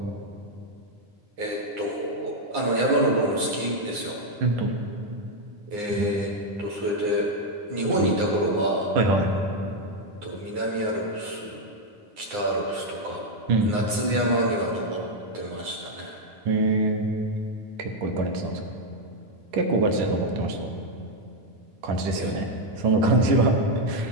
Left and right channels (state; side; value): late; left; 9.8 ms